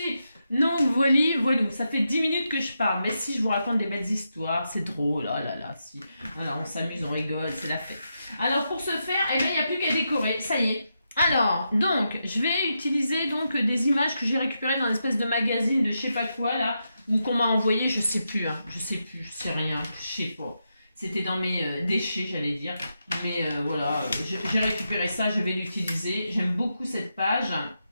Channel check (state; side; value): inverted; both; correlation -0.85